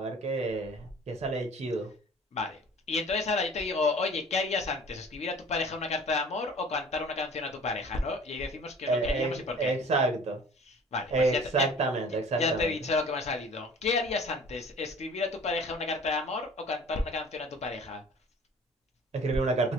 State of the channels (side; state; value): both; normal; correlation 0.47